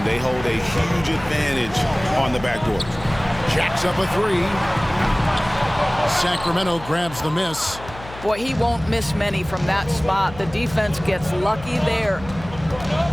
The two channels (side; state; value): left; noise; hum, 15 dB below the sound